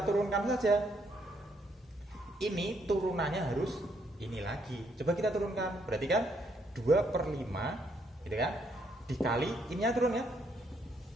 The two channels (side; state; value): both; normal; correlation 0.72